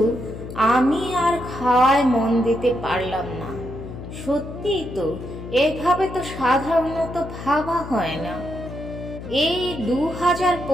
আমি আর খাওয়ায় মন দিতে পারলাম না। সত্যিই তো, এভাবে তো সাধারণত ভাবা হয় না। এই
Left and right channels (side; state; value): left; noise; hum, 11 dB below the sound